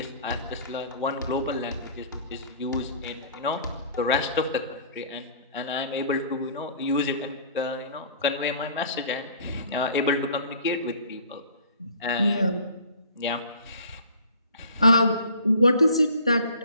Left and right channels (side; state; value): both; inverted; correlation -0.50